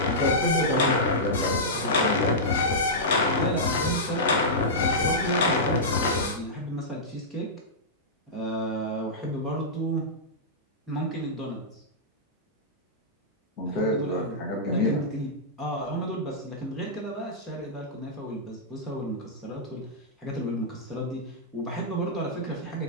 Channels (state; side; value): normal; both; correlation -0.13